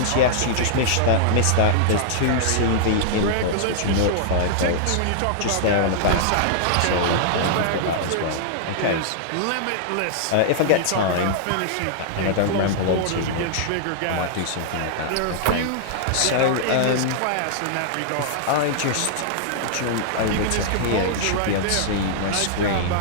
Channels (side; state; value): both; different; correlation -0.01